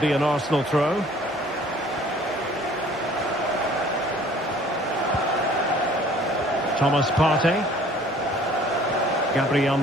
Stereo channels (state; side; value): normal; both; correlation 0.54